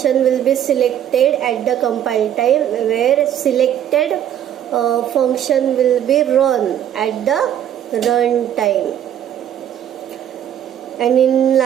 will be selected at the compile time, where selected function will be run at the run time. And in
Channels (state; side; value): quieter; left; 10.4 dB